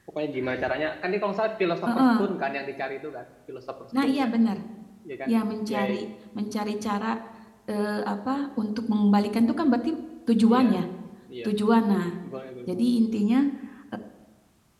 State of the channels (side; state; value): both; identical; correlation 1.00